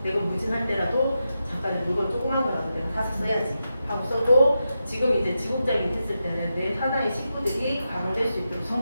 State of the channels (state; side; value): inverted; both; correlation -0.88